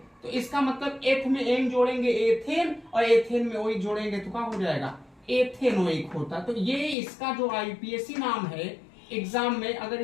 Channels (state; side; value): drops out; right; at 7.0 s